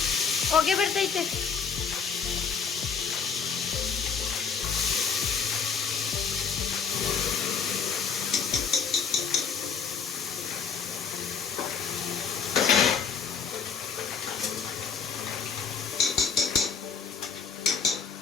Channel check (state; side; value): quieter; right; 6.1 dB